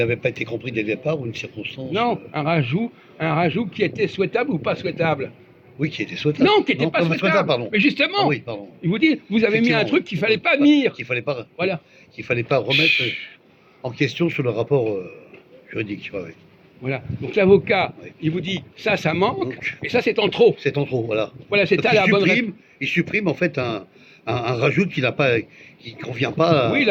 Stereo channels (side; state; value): both; identical; correlation 1.00